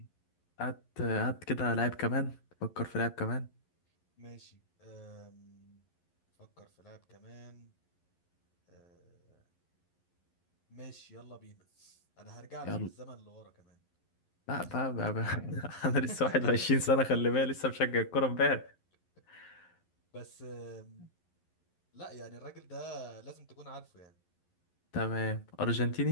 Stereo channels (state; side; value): late; right; 11 ms